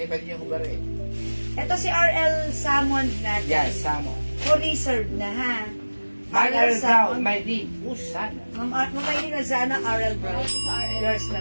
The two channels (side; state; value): both; inverted; correlation -1.00